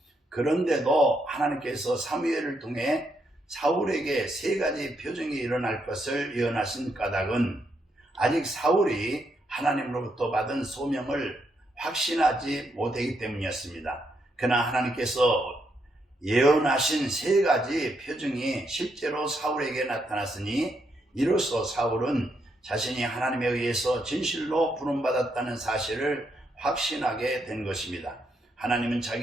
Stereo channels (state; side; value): normal; both; correlation 0.79